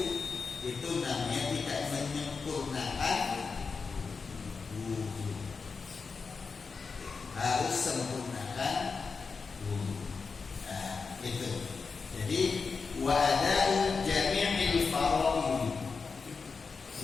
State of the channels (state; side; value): quieter; right; 4.9 dB